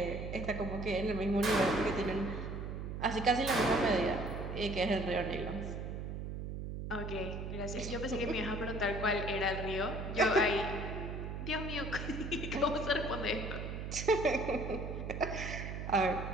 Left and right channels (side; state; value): right; noise; hum, 5 dB below the sound